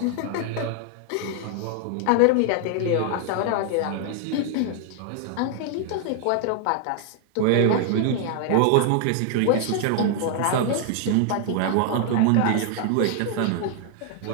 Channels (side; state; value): both; different; correlation 0.00